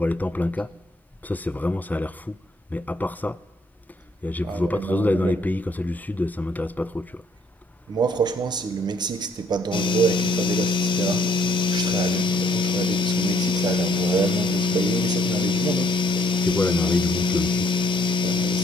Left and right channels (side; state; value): both; normal; correlation 0.66